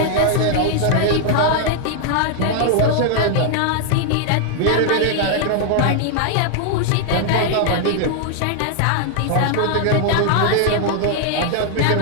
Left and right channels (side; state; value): both; different; correlation 0.00